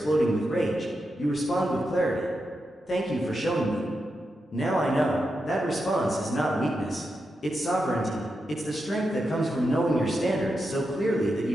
with rage, you respond with clarity. Thank you for showing me. Now I know, that response is not weakness. It's sovereignty. It's the strength that comes from knowing your standards so clearly that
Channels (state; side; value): normal; both; correlation 0.87